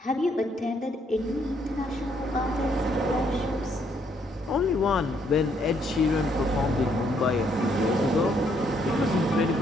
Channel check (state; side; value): normal; both; correlation 0.70